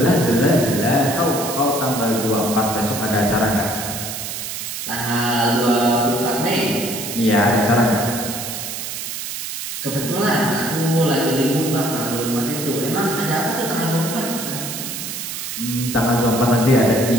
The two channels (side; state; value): right; noise; hiss, 6 dB below the sound